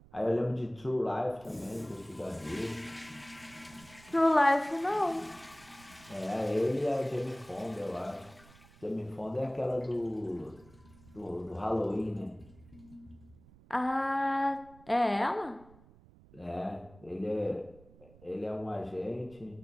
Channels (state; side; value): noise; right; rumble, 24 dB below the sound